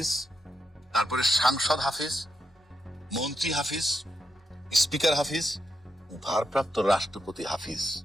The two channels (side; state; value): both; normal; correlation 0.84